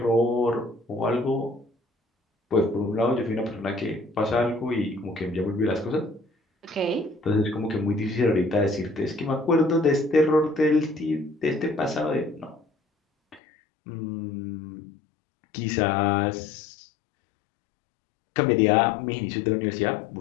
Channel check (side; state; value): right; drops out; at 13.4 s